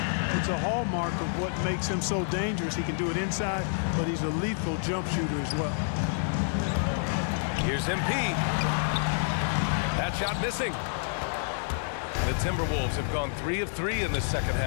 It's a hallmark of what makes him so dangerous. He can do it inside, but he's a lethal jump shooter as well. Here's MP. That shot missing. The Timberwolves have gone 3 of 3 in this second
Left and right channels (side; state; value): right; silent; digital silence